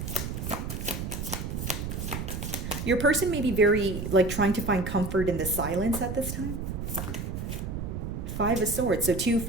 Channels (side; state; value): right; noise; rumble, 5 dB below the sound